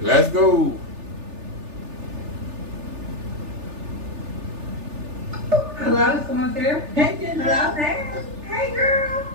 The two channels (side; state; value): left; late; 3.4 ms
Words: go. Hello, someone's there? Hey, Kendra. Hello? Hey, girl.